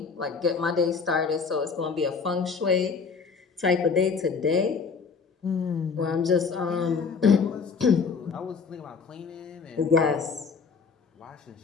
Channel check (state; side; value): quieter; right; 5.3 dB